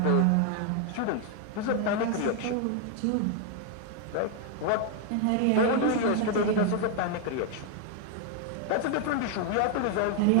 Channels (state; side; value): different; both; correlation 0.00